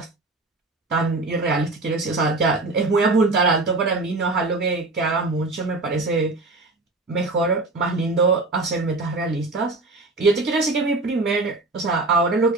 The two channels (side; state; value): left; quieter; 3.2 dB